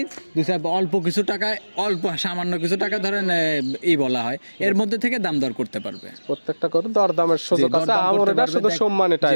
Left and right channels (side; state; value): both; inverted; correlation -1.00